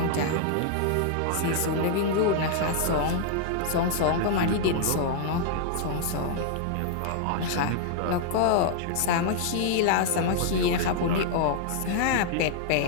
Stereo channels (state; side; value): different; both; correlation -0.01